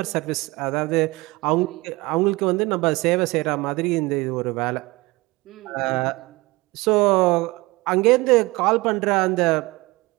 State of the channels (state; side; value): quieter; left; 22.5 dB